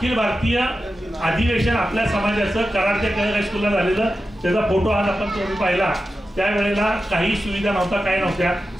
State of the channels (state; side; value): normal; both; correlation 0.92